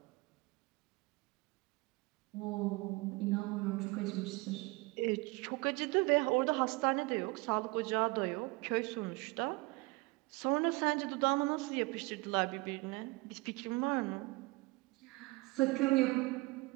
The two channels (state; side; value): quieter; left; 24.7 dB